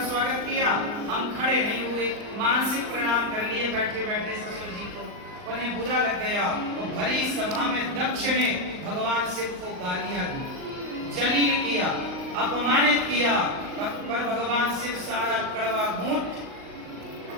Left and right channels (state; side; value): late; left; 39 ms